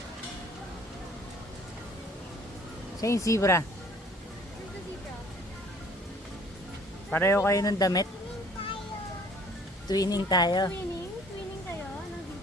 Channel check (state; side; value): normal; both; correlation 0.55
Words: Siya yung zebra. Pareho kayo ng damit? Twinning tayo. Twinning? Twinning kayo ng